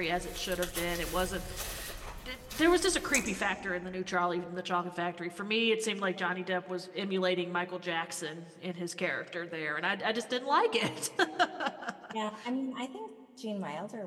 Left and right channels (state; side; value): identical; both; correlation 1.00